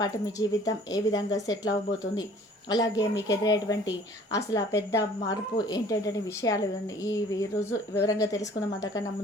మీ జీవితం ఏ విధంగా సెటిల్ అవ్వబోతుంది, అలాగే మీకు ఎదురయ్యేటువంటి అసలు ఆ పెద్ద మార్పు ఏంటంటే విషయాలు ఈ రోజు వివరంగా తెలుసుకుందాం. అంతకన్నా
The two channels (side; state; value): both; normal; correlation 0.52